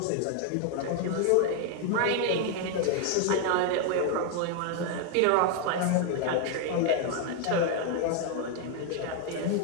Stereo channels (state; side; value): different; both; correlation 0.01